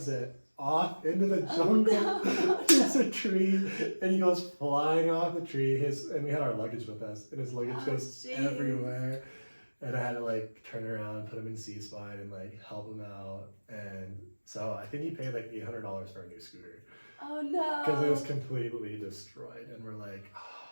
it off into the jungle. Oh, no. It's a tree, and he goes flying off the tree. And we had our luggage with us, and his luggage goes jeez. everywhere. And I had to like turn around, put him in C-spine, and like help him out. And so I think he paid like $800 for a new scooter Oh no. because it was completely destroyed. And we're like,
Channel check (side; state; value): both; inverted; correlation -1.00